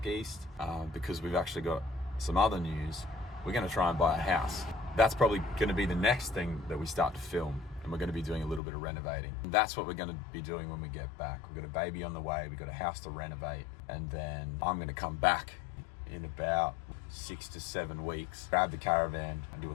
east because we've actually got some other news. We're going to try and buy a house. That's probably going to be the next thing that we start to film, and we're going to be doing a little bit of renovating. And that's what we're going to be doing when we get back. We've got a baby on the way, we've got a house to renovate, and then I'm going to come back in about 6 to 7 weeks, grab the caravan and do a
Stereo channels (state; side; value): drops out; right; at 8.6 s